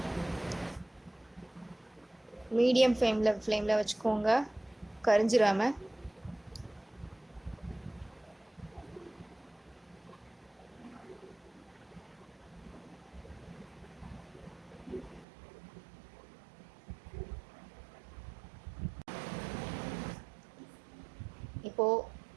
மீடியம் ஃப்ளேமில் வச்சுக்கோங்க, கரிஞ்சிராம. இப்போது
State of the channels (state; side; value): drops out; left; at 15.2 s